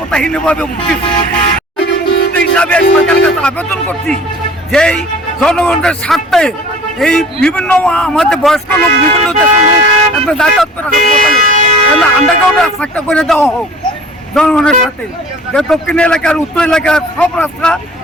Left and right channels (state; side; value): normal; both; correlation 0.47